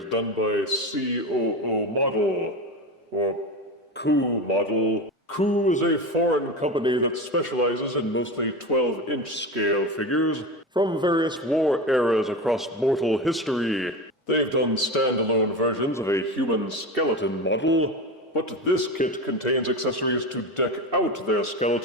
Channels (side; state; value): both; normal; correlation 0.24